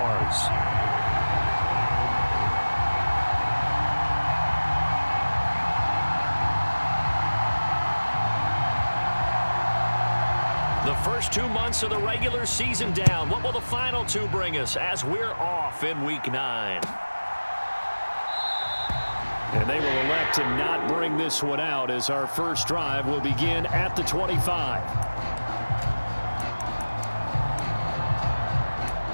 The first 2 months of the regular season down. What will the final 2 bring us as we're off in Week 9? And they will elect to not bring this one out as our first drive will begin at the 25.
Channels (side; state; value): both; inverted; correlation -1.00